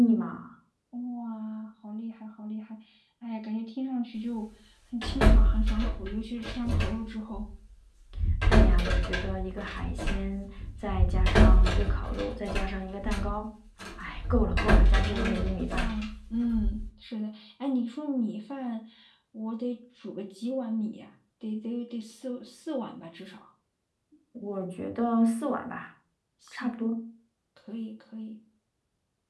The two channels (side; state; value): both; identical; correlation 1.00